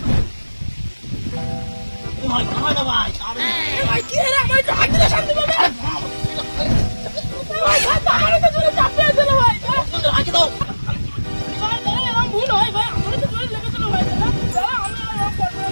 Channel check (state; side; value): inverted; both; correlation -1.00